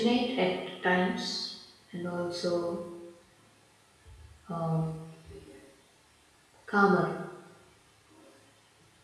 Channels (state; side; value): identical; both; correlation 1.00